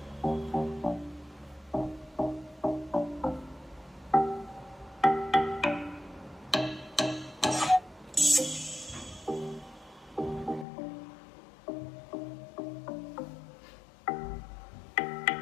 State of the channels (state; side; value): drops out; right; at 10.7 s